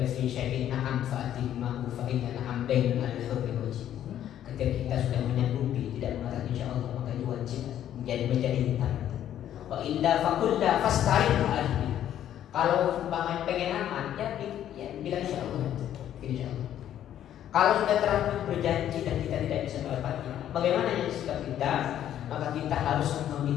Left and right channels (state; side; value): quieter; right; 11.0 dB